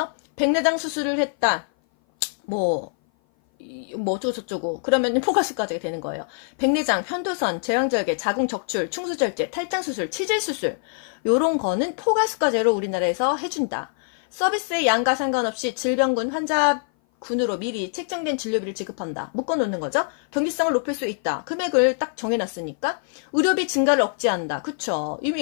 백내장 수술을 했다. 뭐 어쩌고 저쩌고. 그러면 포괄수가제가 되는 거예요. 백내장, 편도선, 제왕절개, 자궁적출, 충수절제, 탈장수술, 치질수술 요런 거는 포괄수가제로 우리나라에서 해준다. 서비스의 양과 상관없이 질병군 환자군으로 미리 책정된 진료비를 지급한다. 묶어놓는 거죠. 경제성을 높일 수 있다. 금액을 딱 정해놨으니까. 의료비 증가를 억제한다. 그쵸.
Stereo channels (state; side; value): silent; right; 57 dB below the other